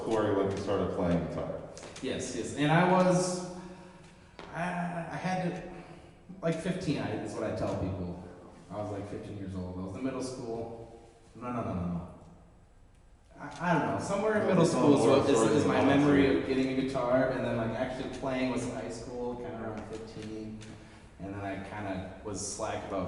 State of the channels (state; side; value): identical; both; correlation 1.00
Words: Cory when he started playing guitar? Yes. And I had to, like 15, is what I tell people. I was like 15 years old. I was in middle school. No. I don't know. Somewhere in middle school is my memory of getting a guitar, and then like actually playing was in high school, kind of around 15. And then I kind of was slack